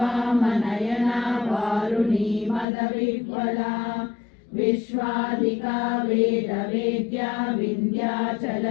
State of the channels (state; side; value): drops out; right; at 2.7 s